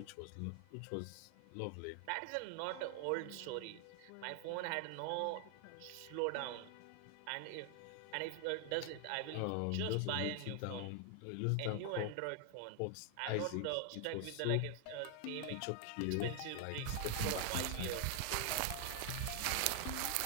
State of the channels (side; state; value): both; different; correlation 0.00